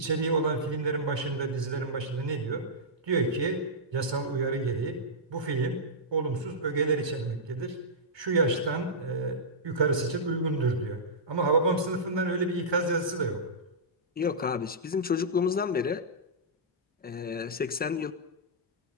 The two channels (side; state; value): both; normal; correlation -0.14